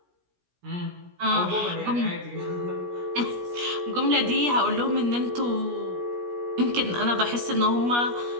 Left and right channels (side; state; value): left; late; 17 ms